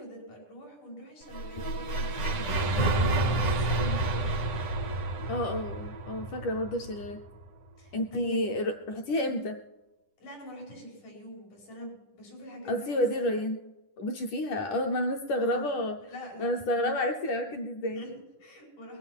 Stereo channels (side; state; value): right; late; 10 ms